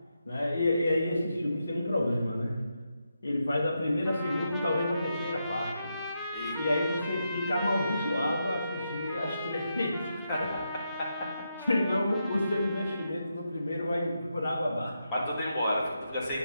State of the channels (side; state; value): both; inverted; correlation -0.84